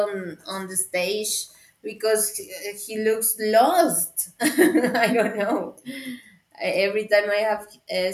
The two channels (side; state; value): both; identical; correlation 1.00